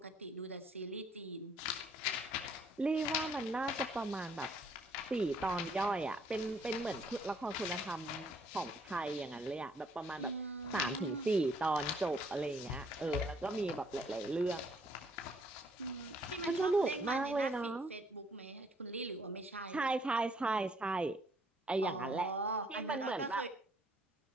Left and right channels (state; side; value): normal; both; correlation 0.66